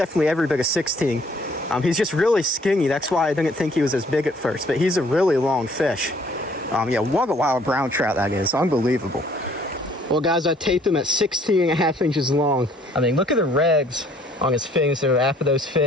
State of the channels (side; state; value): both; normal; correlation 0.60